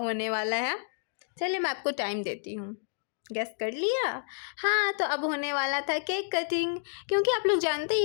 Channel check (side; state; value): right; silent; digital silence